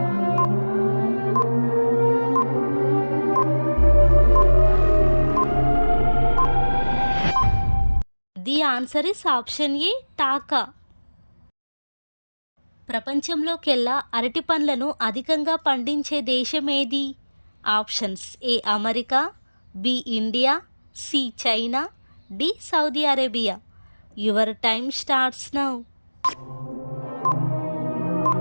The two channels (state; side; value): inverted; both; correlation -1.00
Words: The answer is option A taka. ప్రపంచంలోకెల్లా అరటి పండ్లను అధికంగా పండించే దేశం ఏది? Options A America, B India, C China, D Saudi Arabia. Your time starts now.